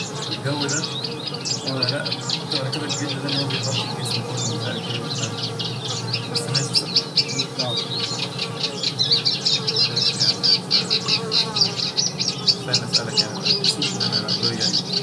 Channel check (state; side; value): identical; both; correlation 1.00